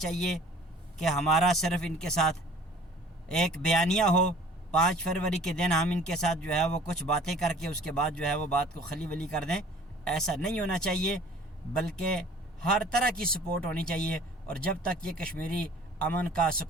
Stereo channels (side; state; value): both; normal; correlation 0.49